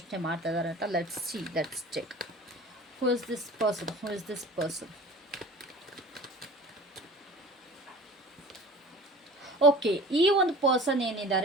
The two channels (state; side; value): normal; both; correlation 0.41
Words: ಮಾಡ್ತಾ ಇದ್ದಾರೆ ಅಂತ let's see, let's check. Who is this person? Who is this person? Okay, ಈ ಒಂದು ಪರ್ಸನ್